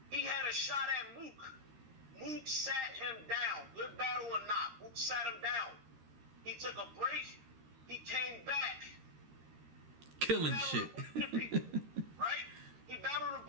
he had a shot at Mook. Mook sat him down. Good battle or not, Mook sat him down. He took a break. He came back. Killing shit. Right? He battled a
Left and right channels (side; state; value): left; late; 13 ms